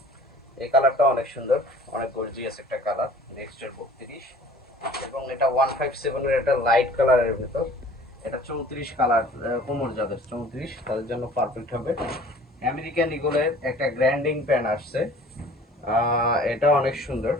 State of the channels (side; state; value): both; normal; correlation 0.48